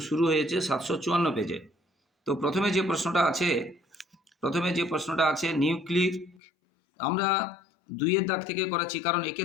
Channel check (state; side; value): drops out; right; at 6.4 s